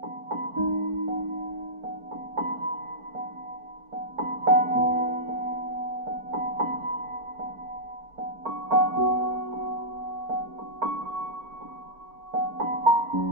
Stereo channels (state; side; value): late; left; 4.4 ms